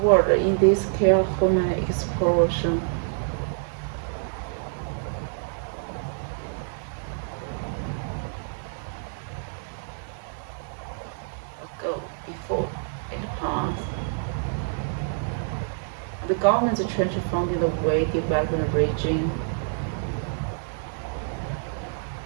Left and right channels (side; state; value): left; silent; digital silence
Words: in this careful exploration. Ago, before, in the past, the government's trying to find the way developing the region.